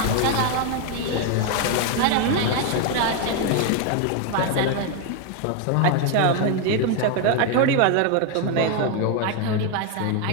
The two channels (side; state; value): both; different; correlation 0.01